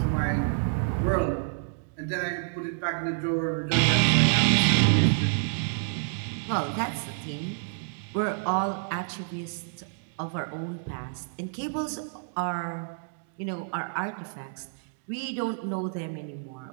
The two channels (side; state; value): left; silent; digital silence